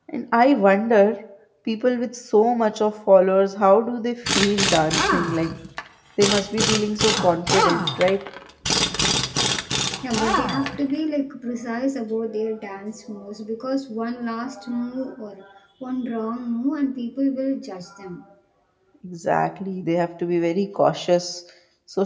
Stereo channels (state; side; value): identical; both; correlation 1.00